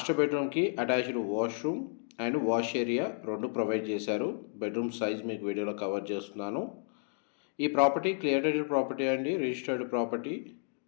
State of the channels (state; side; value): silent; right; digital silence